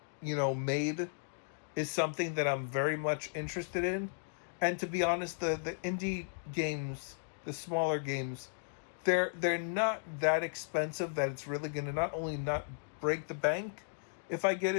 made is something that I'm very much interested in. And to be honest, the indie games, the smaller games, they're not that expensive that it's really going to not only not break the bank if I get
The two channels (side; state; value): right; silent; digital silence